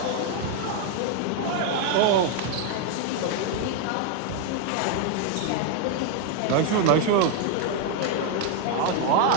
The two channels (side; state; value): both; different; correlation 0.00